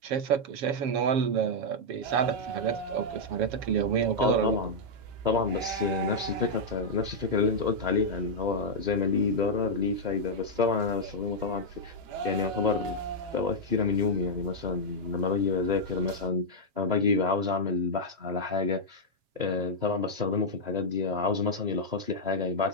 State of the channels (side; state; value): left; late; 7.3 ms